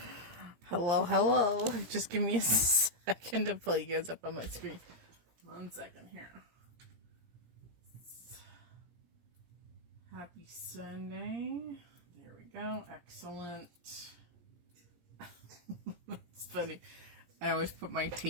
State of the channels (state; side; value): late; left; 17 ms